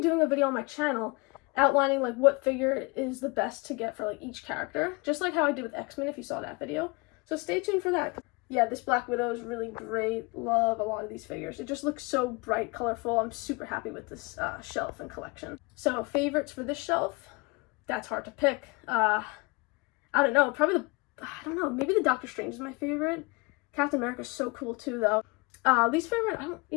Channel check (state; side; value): quieter; right; 27.7 dB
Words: a video on my channel outlining like what figure is the best to get for like each character, just like how I did with X-Men if you saw that video. So stay tuned for that. Yeah, this Black Widow is really great. Love a lot of these figures. It just looks so bright, colorful. I'm super happy with this shelf and collection. So favorites for this shelf, that's hard to pick. I don't know, maybe the Doctor Strange is my favorite. Captain America's so cool too though. Least favorite, I don't